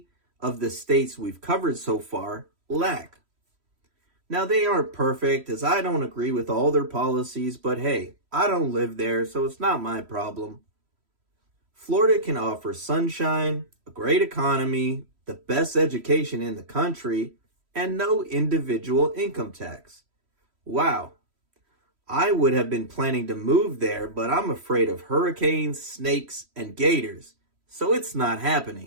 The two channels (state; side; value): late; left; 3.1 ms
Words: of the states we've covered so far lack. Now, they aren't perfect, as I don't agree with all their policies, but hey, I don't live there, so it's not my problem. Florida can offer sunshine, a great economy, the best education in the country, and no individual income tax. Wow. I would have been planning to move there, but I'm afraid of hurricanes, snakes, and gators, so it's not